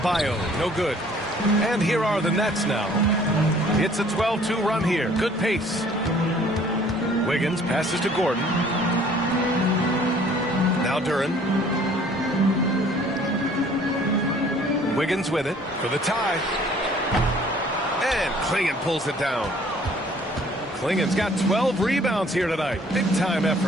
no good. And here are the Nets now. It's a 12-2 run here. Good pace. Wiggins passes to Gordon. Now Duren. Wiggins with it for the tie. And And Clingan pulls it down. Klingen's got 12 rebounds here tonight. Big-time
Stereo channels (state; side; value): normal; both; correlation 0.56